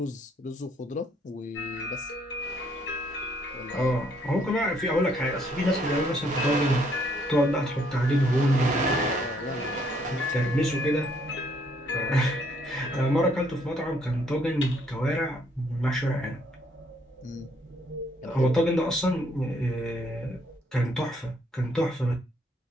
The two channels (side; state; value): both; normal; correlation 0.68